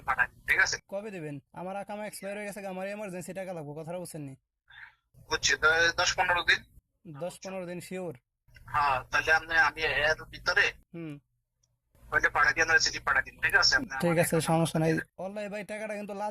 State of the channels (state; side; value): identical; both; correlation 1.00